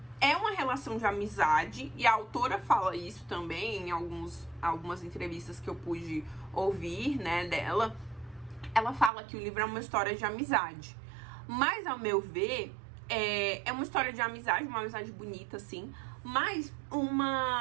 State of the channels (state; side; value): drops out; left; at 9.1 s